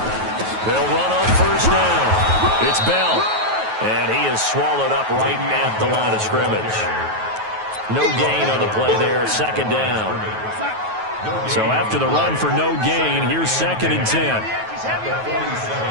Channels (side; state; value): left; late; 9.3 ms